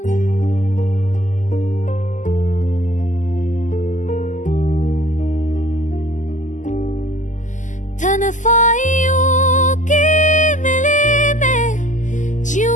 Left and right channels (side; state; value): right; late; 0.37 ms